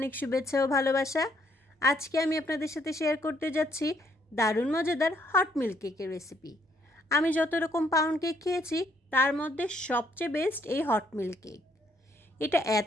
শুভেচ্ছা ও ভালোবাসা। আজকে আমি আপনাদের সাথে শেয়ার করতে যাচ্ছি দারুণ মজাদার হট মিল্ক কেকের রেসিপি। আমি যত রকম পাউন্ড কেক খেয়েছি তার মধ্যে সবচেয়ে বেস্ট এই হট মিল্ক কেক। এটা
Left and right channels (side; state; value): both; normal; correlation 0.69